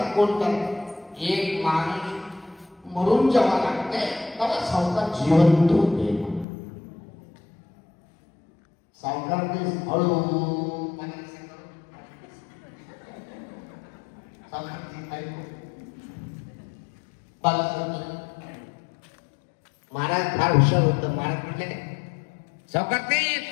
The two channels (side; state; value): right; drops out; at 6.5 s